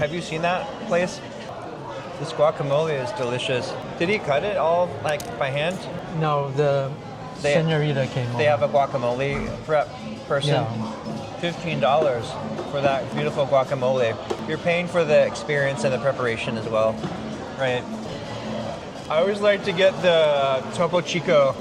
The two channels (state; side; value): identical; both; correlation 1.00